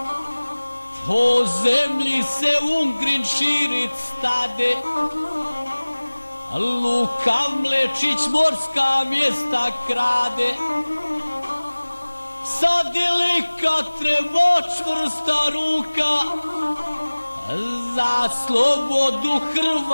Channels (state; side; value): inverted; both; correlation -1.00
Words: po zemlji se Ungrin širit stade, Luka Mlečić morska mjesta krade, sad je lika treba čvrsta ruka, za slobodu